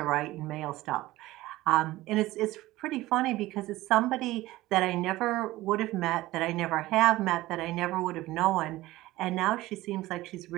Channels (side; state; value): left; quieter; 17.5 dB